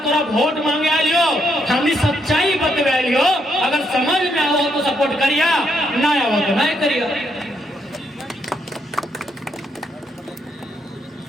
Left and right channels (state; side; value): normal; both; correlation 0.76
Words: तोरा वोट मांगे लियो, हमने सच्चाई बतवा लियो। अगर समझ में आओ तो सपोर्ट करिया, ना आओ तो नहीं करिया।